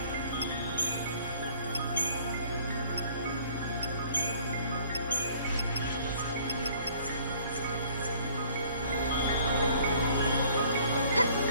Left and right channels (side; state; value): both; inverted; correlation -0.57